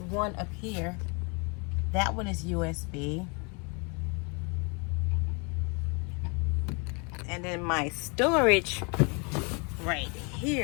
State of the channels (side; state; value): right; quieter; 32.8 dB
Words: one up here. That one is USB. And then my storage right